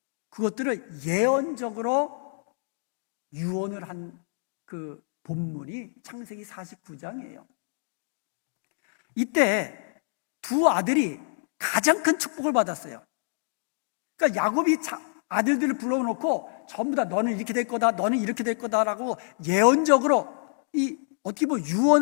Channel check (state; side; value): silent; right; digital silence